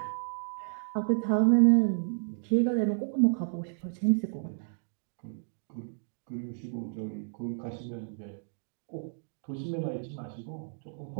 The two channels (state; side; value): silent; left; digital silence